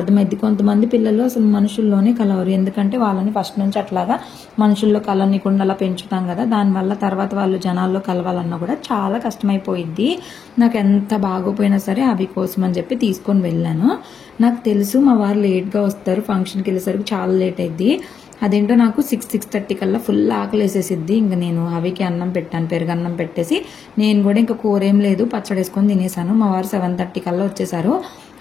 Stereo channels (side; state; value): right; quieter; 6.7 dB